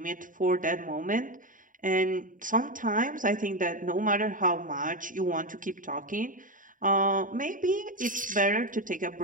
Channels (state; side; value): late; left; 0.39 ms